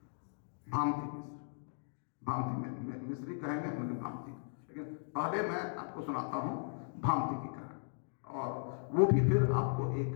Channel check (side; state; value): right; silent; digital silence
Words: भामती मिश्र। भामती मिश्री कहेंगे, लेकिन भामती। लेकिन पहले मैं आपको सुनाता हूँ भामती की कहानी, और वो भी फिर आपको एक